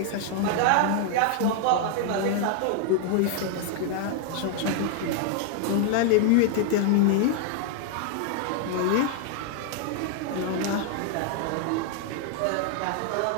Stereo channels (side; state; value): both; different; correlation 0.00